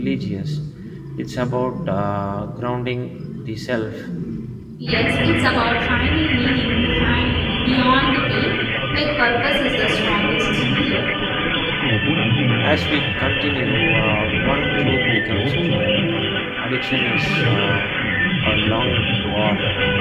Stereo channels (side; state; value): both; identical; correlation 1.00